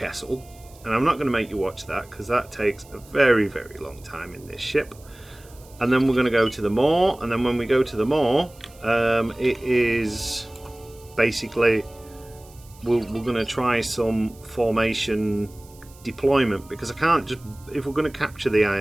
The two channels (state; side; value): noise; right; hiss, 25 dB below the sound